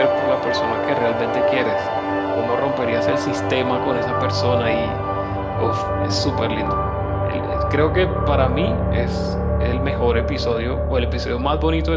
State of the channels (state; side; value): identical; both; correlation 1.00